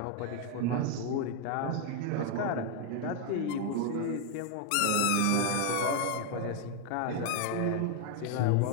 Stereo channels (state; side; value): different; both; correlation 0.00